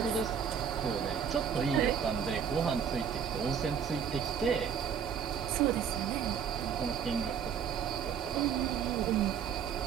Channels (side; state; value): left; quieter; 7.6 dB